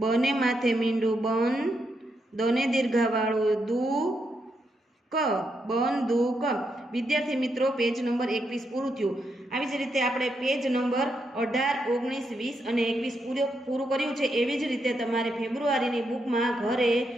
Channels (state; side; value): normal; both; correlation 0.81